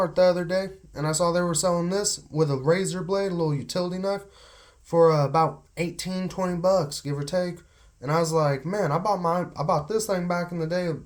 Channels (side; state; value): both; identical; correlation 1.00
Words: the other day and I saw they were selling this with a razor blade, a little utility knife, for about 18, 20 bucks, give or take. And I was like, man, I bought this thing back in the day,